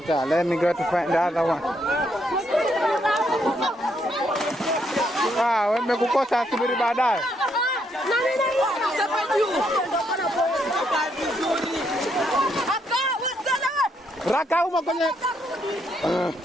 Let me go to find the other one. Wamekukosa subiri baadaye. Raka uma kwenye.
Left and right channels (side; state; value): both; normal; correlation 0.75